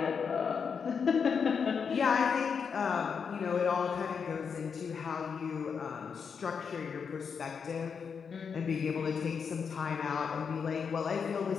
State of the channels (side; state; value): right; quieter; 6.3 dB